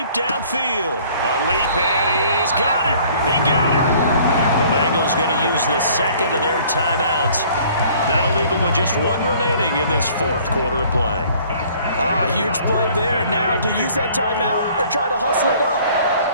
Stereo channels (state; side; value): inverted; both; correlation -0.55